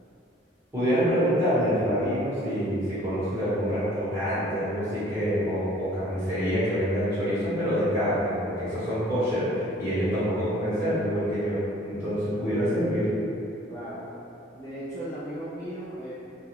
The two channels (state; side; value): normal; both; correlation 0.54